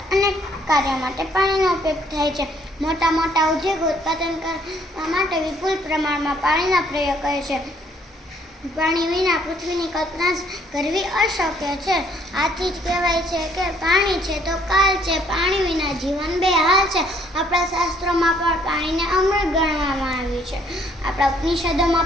અનેક કાર્યો માટે પાણીનો ઉપયોગ થાય છે. મોટા મોટા ઉદ્યોગો ઉત્પાદન કરવા માટે વિપુલ પ્રમાણમાં પાણીનો પ્રયોગ કરે છે. પાણી વિના પૃથ્વીની કલ્પના કરવી અશક્ય છે. આથી જ કહેવાય છે કે પાણી છે તો કાલ છે. પાણી વિના જીવન બેહાલ છે. આપણા શાસ્ત્રોમાં પણ પાણીને અમૃત ગણવામાં આવ્યું છે. આપણા ઉપનિષદોમાં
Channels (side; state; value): both; normal; correlation 0.64